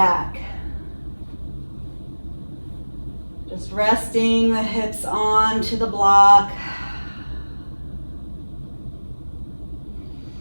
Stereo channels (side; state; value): both; inverted; correlation -1.00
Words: Just resting the hips onto the block.